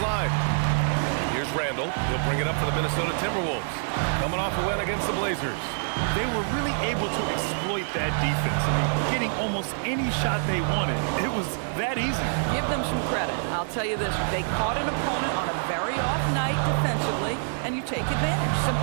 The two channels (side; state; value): left; silent; digital silence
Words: Here's Randall. He'll bring it up for the Minnesota Timberwolves. Coming off a win against the Blazers. They were really able to exploit that defense. I mean, getting almost any shot they wanted. It was that easy. Give them some credit. I'll tell you this. They caught an opponent on a very off night defensively, and you take advantage.